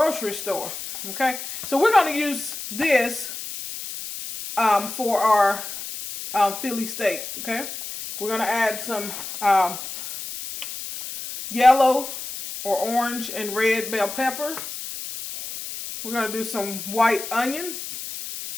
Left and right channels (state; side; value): noise; left; hiss, 8 dB below the sound